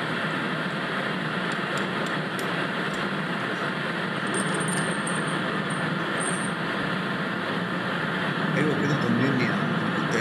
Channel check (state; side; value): identical; both; correlation 1.00